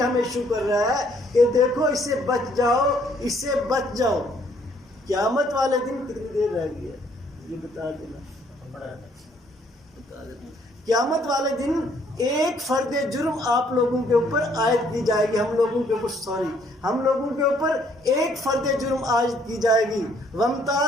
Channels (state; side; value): normal; both; correlation 0.65